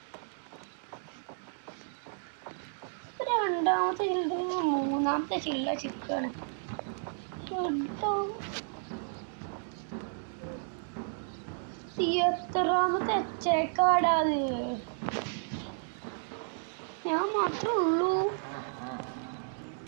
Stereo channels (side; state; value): left; silent; digital silence